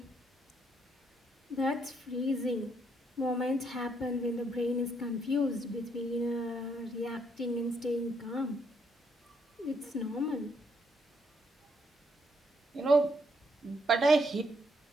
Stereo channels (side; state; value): both; normal; correlation 0.74